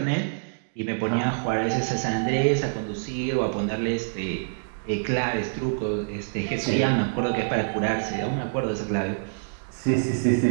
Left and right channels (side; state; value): left; silent; digital silence